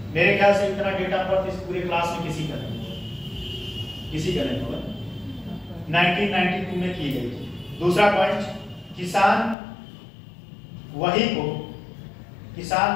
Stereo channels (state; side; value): drops out; right; at 9.6 s